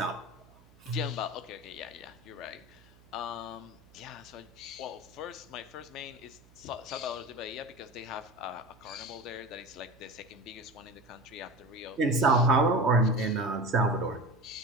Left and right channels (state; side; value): noise; right; hum, 26 dB below the sound